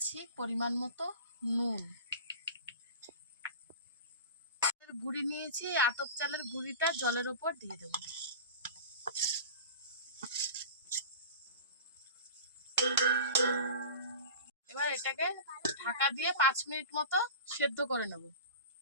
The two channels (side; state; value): both; inverted; correlation -0.33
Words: পরিমাণ মতো নুন। গুঁড়ি নিয়েছি, আতপ চালের গুঁড়িটা জলের ওপর দিয়ে দেব। এবার এটাকে ঢাকা দিয়ে 5 মিনিট মতো সেদ্ধ করে নেব।